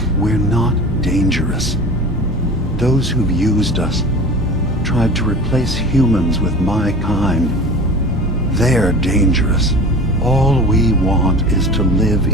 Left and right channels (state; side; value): normal; both; correlation 0.37